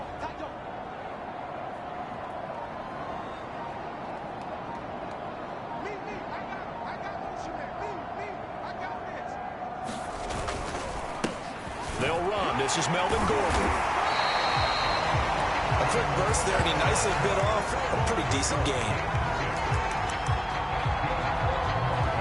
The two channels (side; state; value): both; identical; correlation 1.00